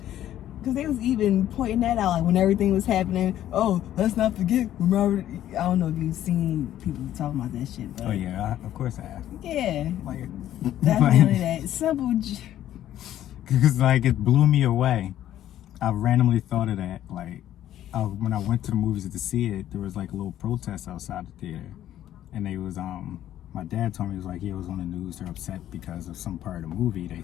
Because they was even pointing that out, like when everything was happening. Oh, let's not forget when Robert. I don't know if you've seen people talking about that shit, but Oh yeah, of course I have. yeah, Like, definitely that Simple. Because like it blew me away. I randomly thought of that. Like when I went to the movies to see it, there was like a little protest outside the theater, and they was my dad told me, it was like, he was on the news, they're upset because of some part of the movie, they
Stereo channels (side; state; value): right; quieter; 12.2 dB